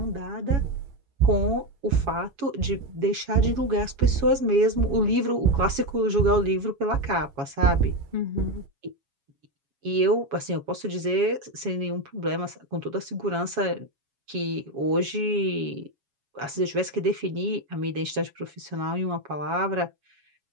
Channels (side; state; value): left; late; 7.2 ms